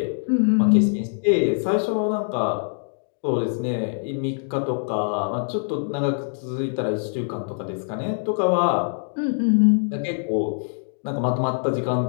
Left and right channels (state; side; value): silent; right; digital silence